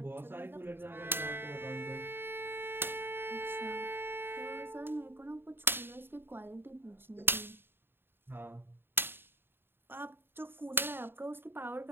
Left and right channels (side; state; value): left; late; 0.10 ms